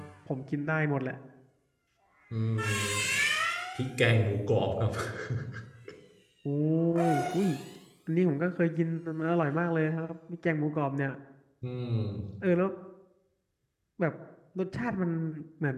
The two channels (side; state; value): both; identical; correlation 1.00